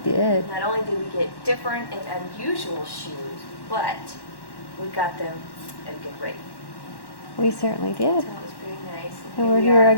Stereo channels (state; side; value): late; right; 1.1 ms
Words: We did. not only did we get different and unusual shoes, but we got them at a good rate. We certainly So did. it was very nice. And we're we here are.